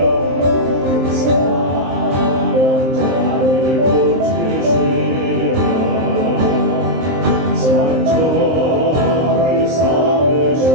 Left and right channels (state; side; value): late; left; 23 ms